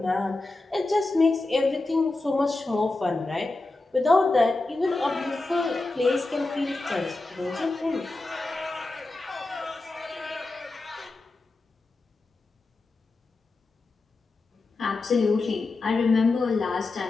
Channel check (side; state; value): right; quieter; 3.2 dB